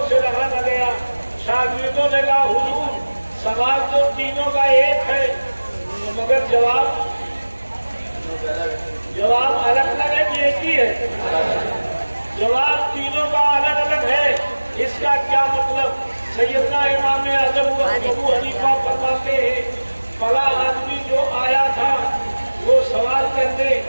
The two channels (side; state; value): both; inverted; correlation -1.00